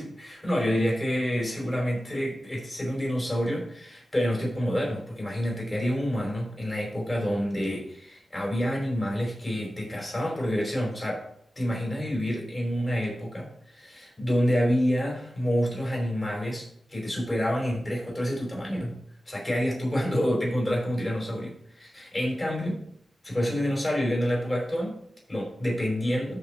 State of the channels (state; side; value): normal; both; correlation 0.94